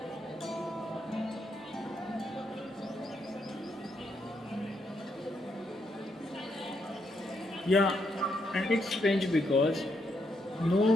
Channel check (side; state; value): both; normal; correlation 0.78